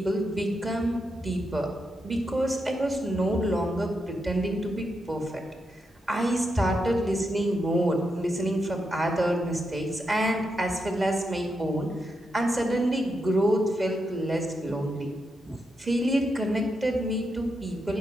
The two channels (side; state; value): both; normal; correlation 0.84